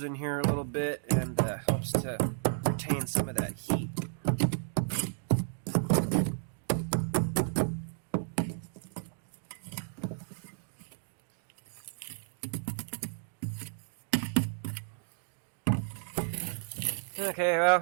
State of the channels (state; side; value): silent; left; digital silence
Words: in here a little bit and helps to retain some of that heat. Okay,